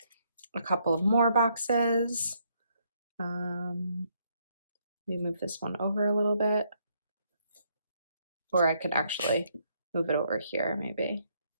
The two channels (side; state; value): both; inverted; correlation -0.72